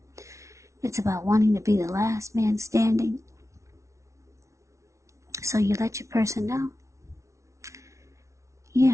It's about wanting to be the last man standing. So you let your person know.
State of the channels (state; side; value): late; left; 0.14 ms